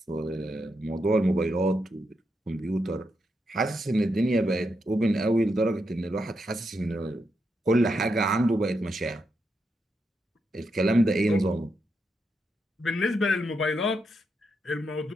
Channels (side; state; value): both; normal; correlation 0.83